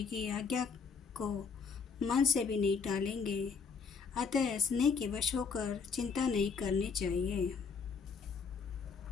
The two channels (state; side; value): quieter; right; 5.6 dB